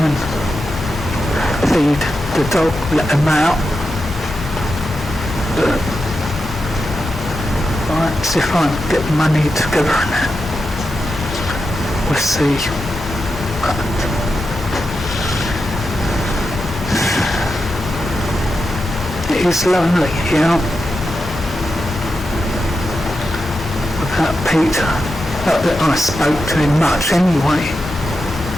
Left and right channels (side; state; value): both; normal; correlation 0.89